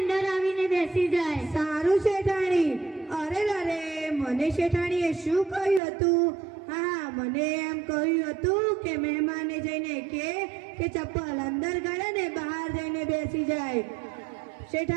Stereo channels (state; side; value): drops out; left; at 5.8 s